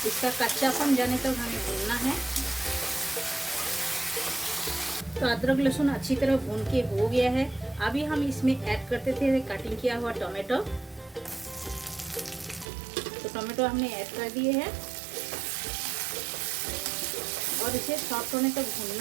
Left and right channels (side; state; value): left; drops out; at 12.7 s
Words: इसका कच्चापन जाने तक हमें भूनना है। तो अदरक लहसुन अच्छी तरह भून के हो गया है। अभी हम इसमें ऐड करते थे कटिंग किया हुआ टोमेटो। तो टोमेटो हमने ऐड कर दिए हैं और इसे सॉफ्ट होने तक